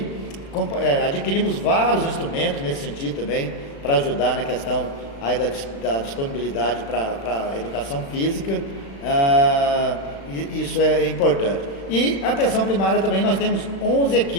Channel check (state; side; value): late; right; 36 ms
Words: Adquirimos vários instrumentos nesse sentido também, para ajudar na questão aí da disponibilidade para a educação física, isso é importante. E a atenção primária também, nós temos 11